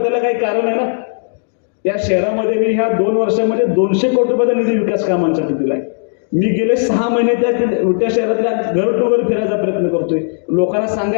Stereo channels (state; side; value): silent; right; digital silence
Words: त्याला काही कारण आहे ना. त्या शहरामध्ये मी ह्या 2 वर्षामध्ये 200 कोटी रुपयाचा निधी विकास कामांसाठी दिलाय. मी गेले 6 महिने त्या शहरातल्या घर टू घर फिरायचा प्रयत्न करतोय, लोकांना